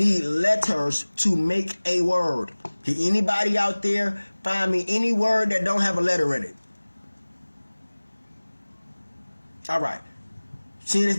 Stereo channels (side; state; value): both; inverted; correlation -1.00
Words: letters to make a word. Can anybody out there find me any word that don't have a letter in it? All right. Seeing as